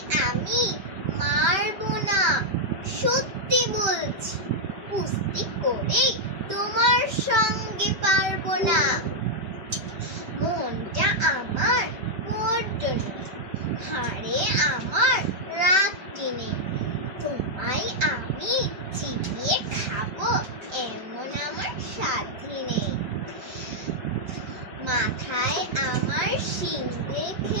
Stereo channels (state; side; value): late; left; 5.1 ms